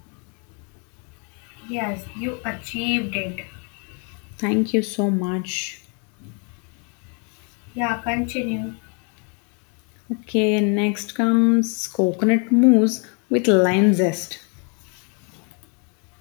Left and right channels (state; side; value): quieter; right; 37.2 dB